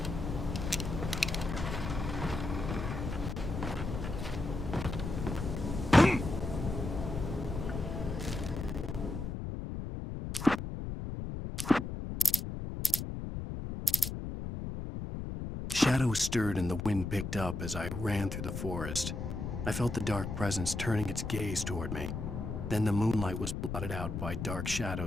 Shadows stirred and the wind picked up as I ran through the forest. I felt the dark presence turning its gaze toward me. Then the moonlight was blotted out by dark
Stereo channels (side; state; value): left; noise; rumble, 5 dB below the sound